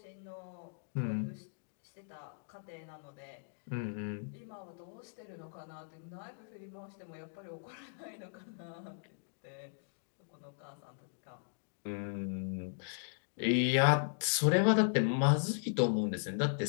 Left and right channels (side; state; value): right; silent; digital silence